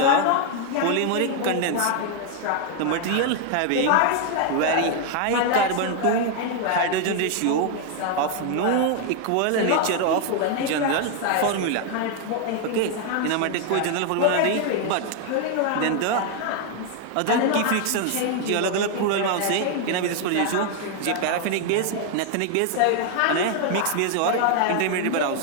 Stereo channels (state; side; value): different; both; correlation 0.00